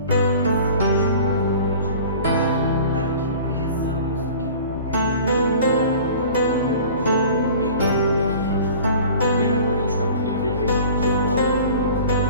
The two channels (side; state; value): both; inverted; correlation -0.43